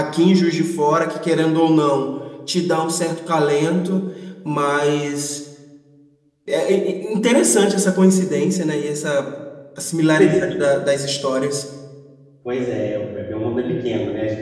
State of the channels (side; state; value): both; identical; correlation 1.00